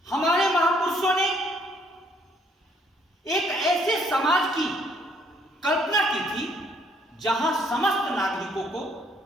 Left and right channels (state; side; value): normal; both; correlation 0.66